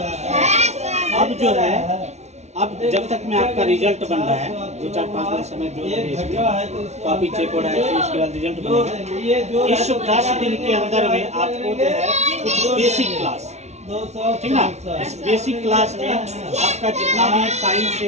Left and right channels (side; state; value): left; late; 0.32 ms